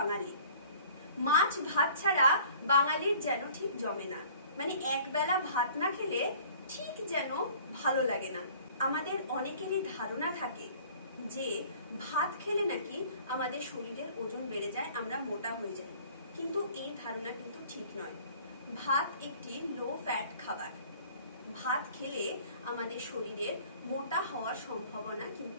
মাছ ভাত ছাড়া বাঙালির যেন ঠিক জমে না, মানে একবেলা ভাত না খেলে ঠিক যেন ভালো লাগে না। আমাদের অনেকেরই ধারণা থাকে যে ভাত খেলে নাকি আমাদের শরীরের ওজন বেড়ে যায়, আমরা মোটা হয়ে যাই, কিন্তু এই ধারণা কিন্তু ঠিক নয়। ভাত একটি লো ফ্যাট খাবার। ভাত খেলে আমাদের শরীরের মোটা হওয়ার সম্ভাবনা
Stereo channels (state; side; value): inverted; both; correlation -0.51